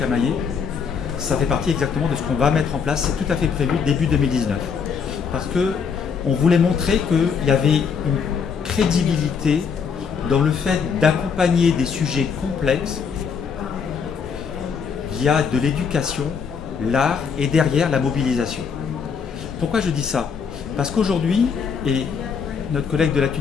ça fait partie exactement de ce qu'on va mettre en place, c'est tout à fait prévu début 2019. Parce qu'on voulait montrer qu'il y avait une crédibilité dans le fait d'accompagner des sujets complexes via de l'éducation, l'art et derrière la mobilisation. Pourquoi je dis ça? Parce qu'aujourd'hui, et notre collègue de la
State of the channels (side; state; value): right; quieter; 6.3 dB